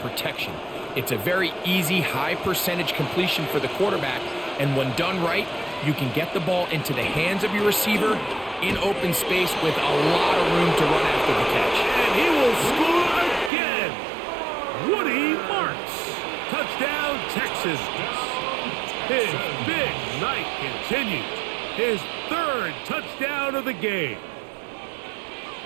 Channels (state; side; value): drops out; left; at 13.5 s